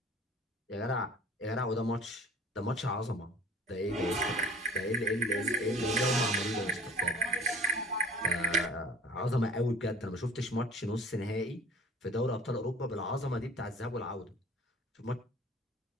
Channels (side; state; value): both; normal; correlation 0.46